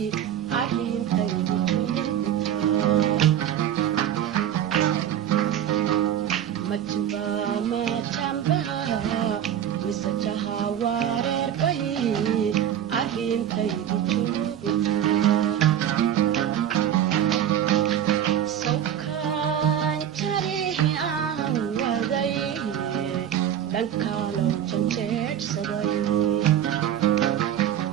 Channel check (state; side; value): quieter; left; 10.2 dB